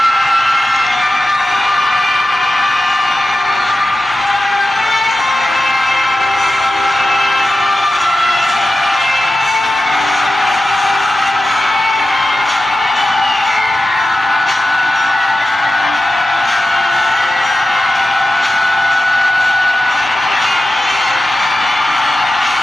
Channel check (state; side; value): normal; both; correlation 0.92